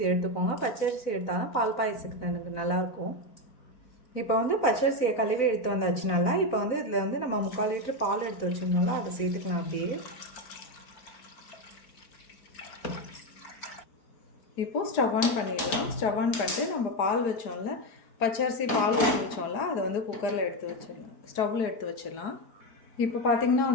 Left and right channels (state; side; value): late; right; 4.4 ms